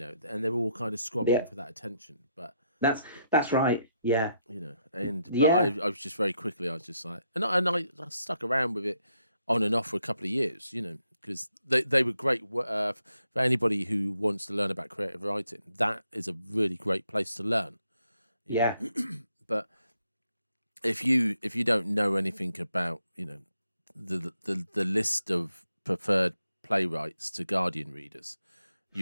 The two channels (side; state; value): both; inverted; correlation -0.78